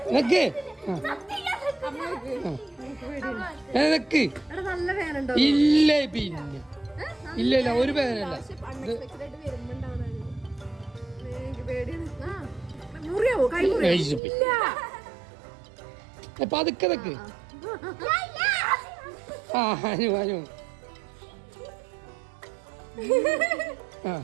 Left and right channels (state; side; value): drops out; left; at 14.2 s